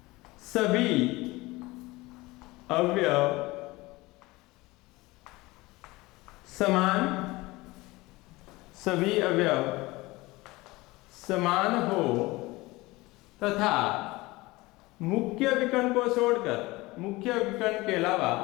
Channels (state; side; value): quieter; right; 21.2 dB